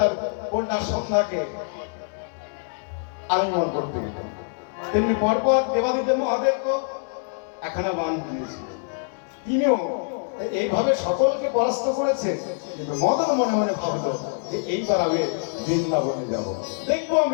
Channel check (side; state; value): right; silent; digital silence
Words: কন্যার সন্ধ্যাকে আলিঙ্গন করতে গেলেন। তেমনি পরপর দেবাদিদেব মহাদেবকে এখানে বাণ দিয়েছিলেন। তিনিও এইভাবে সকলকে পরাস্ত করেছে, কিন্তু মদন মনে মনে ভাবলো যে এইবার আমি বৃন্দাবনে যাব, দেখবো